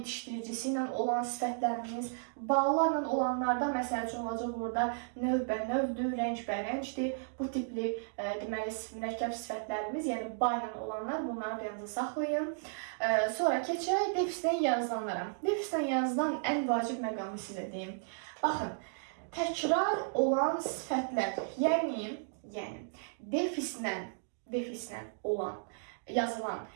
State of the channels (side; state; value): left; silent; digital silence